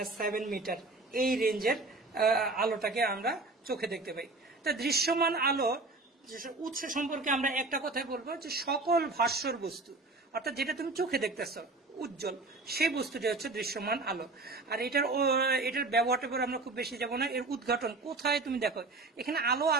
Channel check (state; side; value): quieter; left; 3.4 dB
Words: মিটার, এই রেঞ্জের আলোটাকে আমরা চোখে দেখতে পাই। তা দৃশ্যমান আলো উৎস সম্পর্কে আমরা একটা কথাই বলবো, যে সকল ভাস্বর বস্তু, অর্থাৎ যেটা তুমি চোখে দেখতেছ উজ্জ্বল, সেই বস্তুটি হচ্ছে দৃশ্যমান আলো। আর এটার ব্যবহারটা পর আমরা খুব বেশি যাবো না। এর উদ্ঘাটন কোথায় তুমি দেখো, এখানে আলো